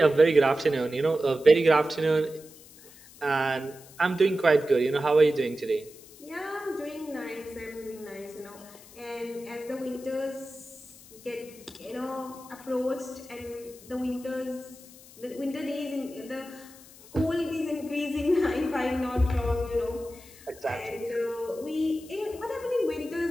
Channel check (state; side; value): noise; left; hiss, 21 dB below the sound